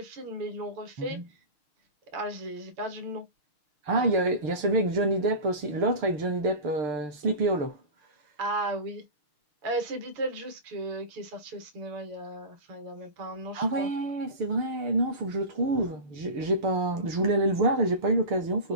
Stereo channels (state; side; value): late; left; 6.7 ms